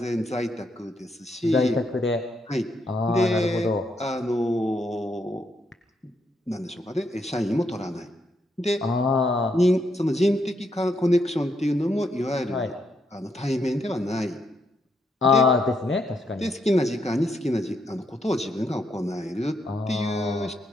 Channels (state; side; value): normal; both; correlation 0.77